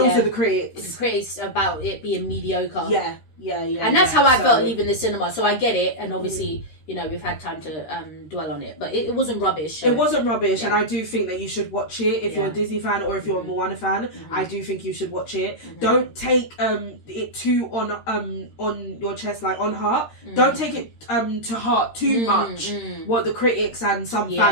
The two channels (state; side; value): late; right; 13 ms